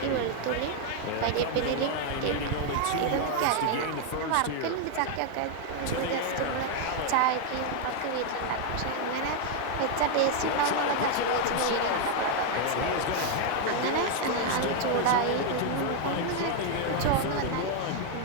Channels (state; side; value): different; both; correlation 0.00